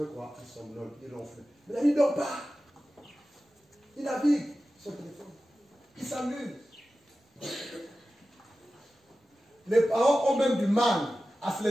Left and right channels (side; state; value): both; normal; correlation 0.94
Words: fait quoi? Il somnole, il ronfle. Mais là, il ne dort pas. Il navigue son téléphone. Il s'amuse. Les parents ont même du mal à se